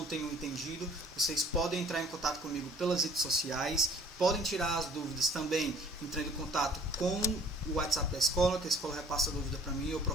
tenham entendido, vocês podem entrar em contato comigo pelas redes sociais, podem tirar as dúvidas também entrando em contato com o WhatsApp da escola, que a escola repassa a dúvida para mim, eu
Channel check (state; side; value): normal; both; correlation 0.54